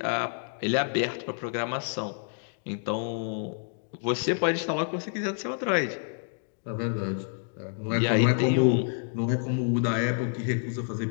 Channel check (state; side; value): silent; right; digital silence